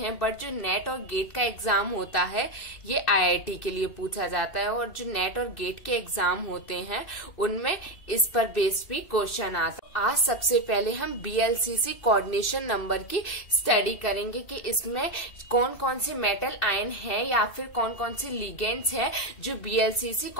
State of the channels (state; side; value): late; right; 2.7 ms